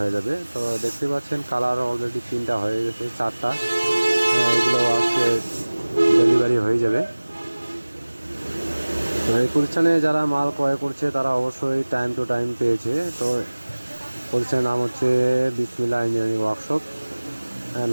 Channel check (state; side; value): inverted; both; correlation -1.00